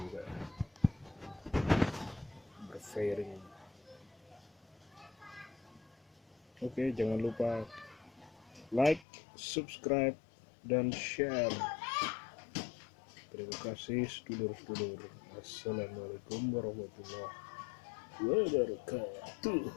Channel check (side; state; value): right; drops out; at 9.1 s